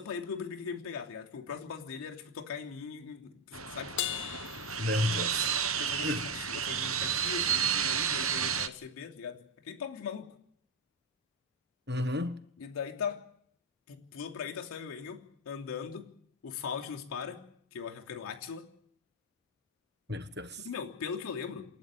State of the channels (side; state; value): both; normal; correlation 0.08